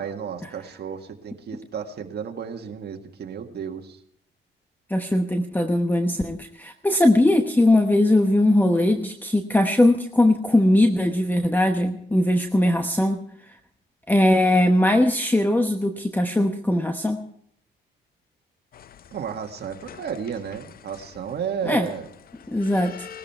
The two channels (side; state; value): both; normal; correlation 0.89